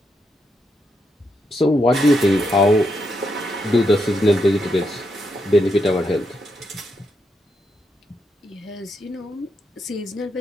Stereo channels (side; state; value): both; normal; correlation 0.81